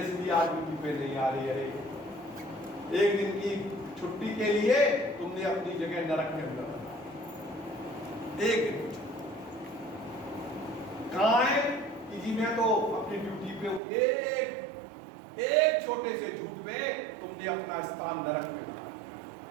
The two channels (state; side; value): drops out; left; at 13.8 s